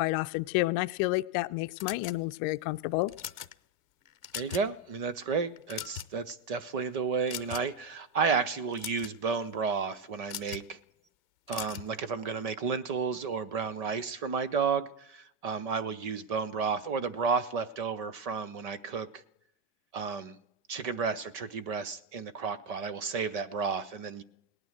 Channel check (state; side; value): late; left; 1.6 ms